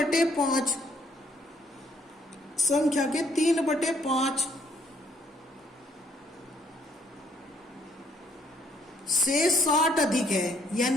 संख्या के 3/5 से 60 अधिक है,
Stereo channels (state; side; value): normal; both; correlation 0.66